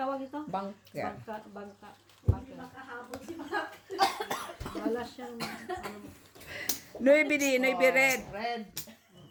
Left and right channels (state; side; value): identical; both; correlation 1.00